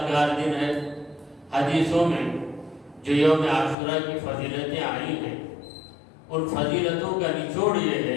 دن ہے۔ حدیثوں میں جو یوم عاشوراء کی فضیلتیں آئی ہیں، ان فضیلتوں کا نچوڑ یہ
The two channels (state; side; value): drops out; right; at 3.8 s